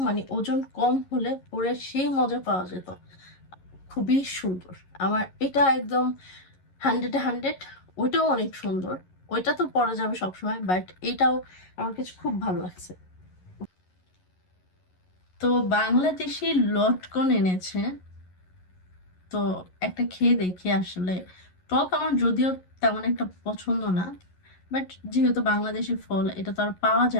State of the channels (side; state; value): right; late; 11 ms